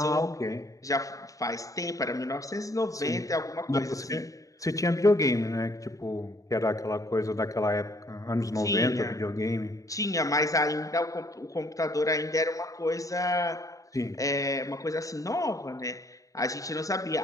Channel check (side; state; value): right; late; 0.16 ms